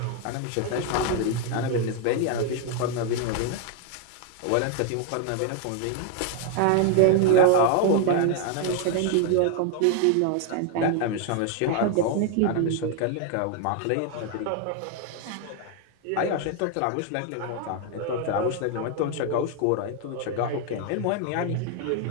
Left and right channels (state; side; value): different; both; correlation 0.00